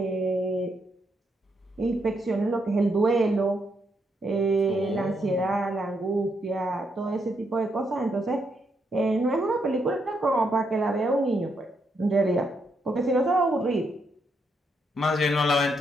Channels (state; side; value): normal; both; correlation 0.78